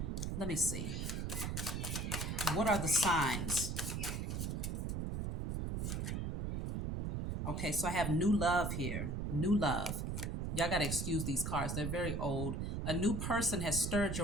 Let me see. What are the signs? Okay, so I have new love here. New love. Y'all got to excuse these cards. They're very old. A new person has stirred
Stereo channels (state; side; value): noise; right; rumble, 2 dB below the sound